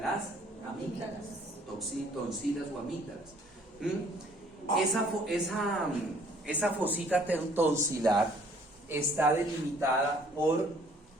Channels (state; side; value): normal; both; correlation 0.59